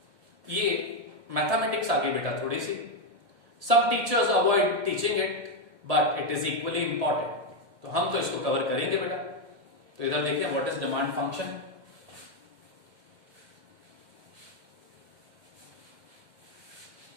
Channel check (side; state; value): left; late; 1.7 ms